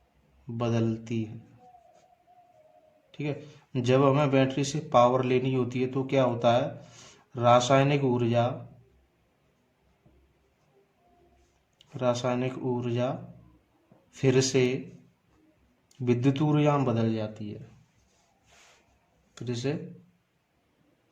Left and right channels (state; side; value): identical; both; correlation 1.00